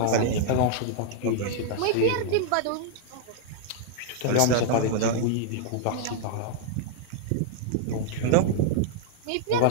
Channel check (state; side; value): different; both; correlation -0.01